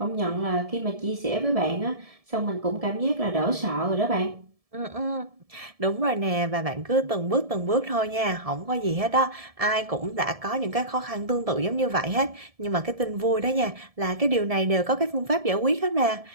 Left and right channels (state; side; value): late; left; 1.7 ms